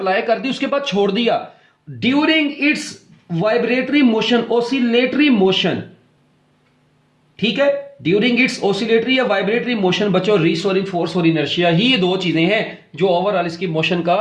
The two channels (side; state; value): both; identical; correlation 1.00